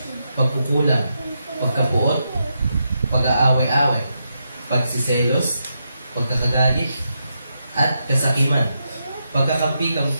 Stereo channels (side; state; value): both; inverted; correlation -0.84